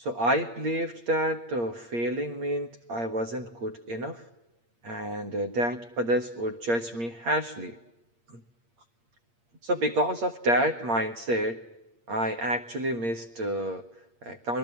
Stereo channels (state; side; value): late; left; 8.6 ms